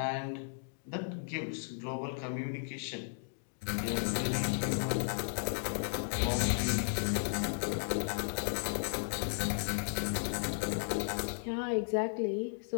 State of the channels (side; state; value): right; silent; digital silence